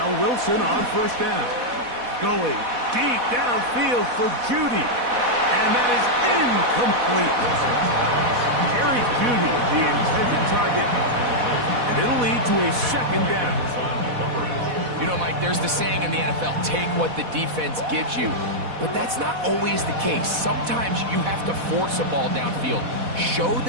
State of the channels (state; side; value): late; left; 4.1 ms